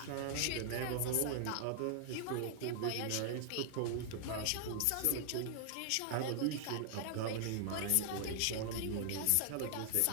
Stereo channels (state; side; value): different; both; correlation 0.00